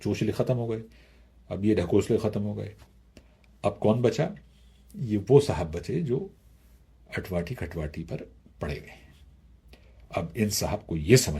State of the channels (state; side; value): identical; both; correlation 1.00